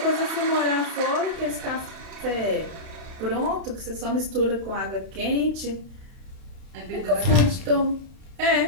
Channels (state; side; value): late; left; 31 ms